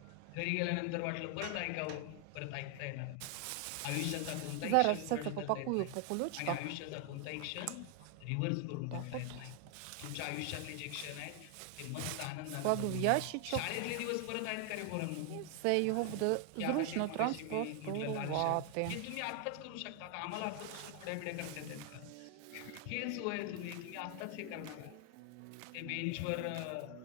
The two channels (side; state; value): both; different; correlation 0.00